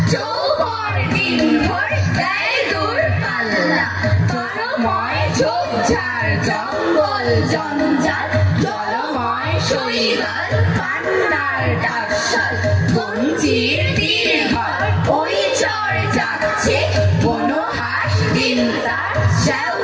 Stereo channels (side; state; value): both; identical; correlation 1.00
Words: জঙ্গল জঞ্জাল জলময় শৈবাল পান্নার ডাকশাল কঞ্চির তীরঘর ওই চর যাচ্ছে কোনো হাঁস দিন তার